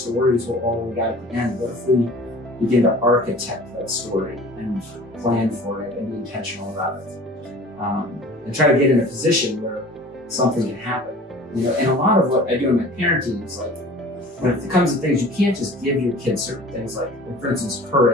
is all we got at the end, what if we begin to architect that story and plan for it and be intentional about it, and try to get in a position where something can happen. And a lot of what I do in my parenting is like, when it comes to things, you can't just give your kids certain things like, for instance,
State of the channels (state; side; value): normal; both; correlation 0.44